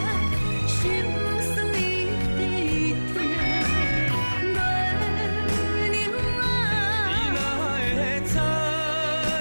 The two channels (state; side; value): inverted; both; correlation -1.00